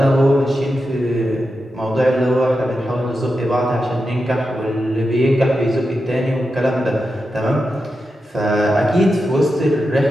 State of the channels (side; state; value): both; normal; correlation 0.89